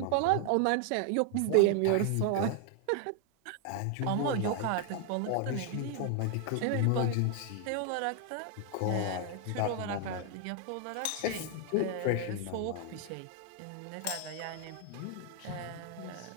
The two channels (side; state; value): both; different; correlation 0.00